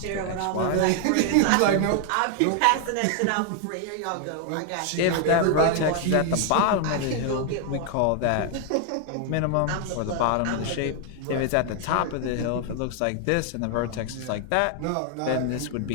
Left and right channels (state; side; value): different; both; correlation 0.00